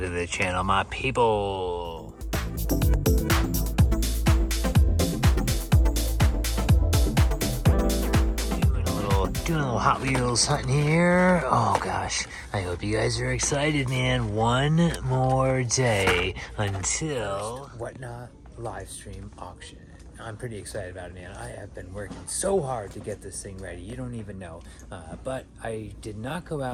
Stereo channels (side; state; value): both; identical; correlation 1.00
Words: the channel, my people. Doing a little Hot Wheels hunting here. Oh gosh, I hope you guys are excited, man. One more day until Whatnot live stream auction. I'm pretty excited about it, man. I have been working so hard to get this thing ready. You don't even know. But I did not go